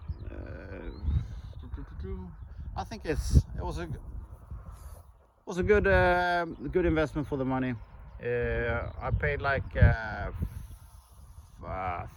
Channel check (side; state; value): both; identical; correlation 1.00